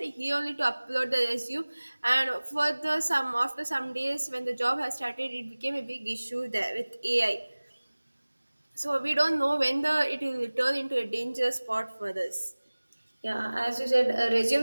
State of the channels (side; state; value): both; inverted; correlation -1.00